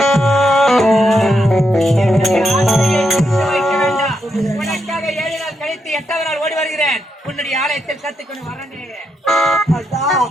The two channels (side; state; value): both; normal; correlation 0.82